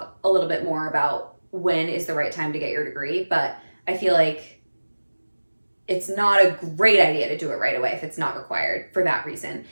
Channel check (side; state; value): both; inverted; correlation -1.00